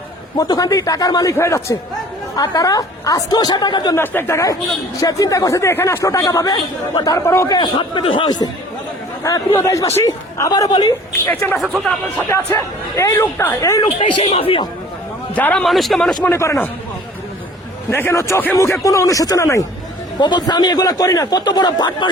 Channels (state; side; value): normal; both; correlation 0.49